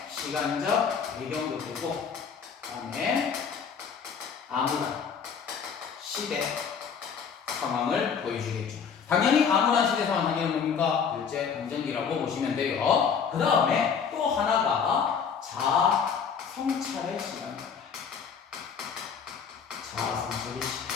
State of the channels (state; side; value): quieter; right; 6.6 dB